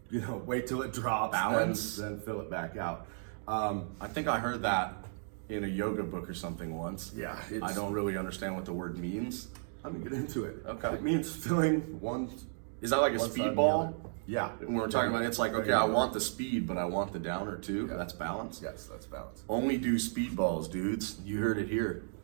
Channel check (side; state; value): left; silent; digital silence